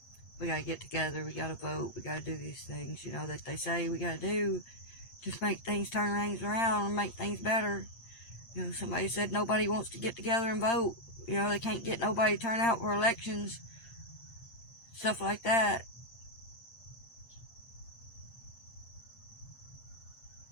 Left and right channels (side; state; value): right; late; 8.7 ms